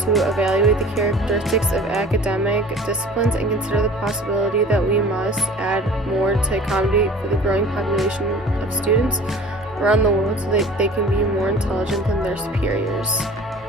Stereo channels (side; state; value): both; normal; correlation 0.45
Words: evaluate the characteristics of academic disciplines and consider the possibility that we must add more to accommodate for the growing population of students around the world so that they can be more intelligent than their superiors.